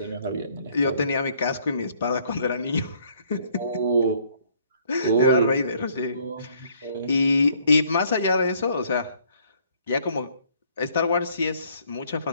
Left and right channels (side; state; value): both; inverted; correlation -0.63